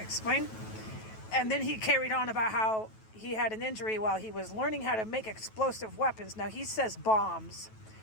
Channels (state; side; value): late; right; 9.2 ms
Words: And then he carried on about how he had an injury while he was learning how to make explosive weapons. Now, he says bombs.